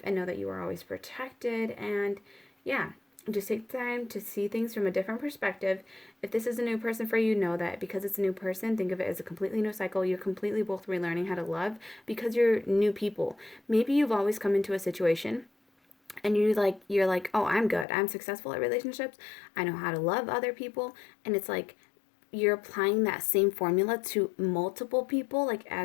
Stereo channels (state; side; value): drops out; right; at 17.9 s